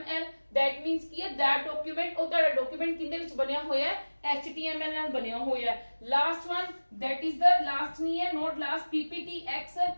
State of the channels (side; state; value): both; inverted; correlation -1.00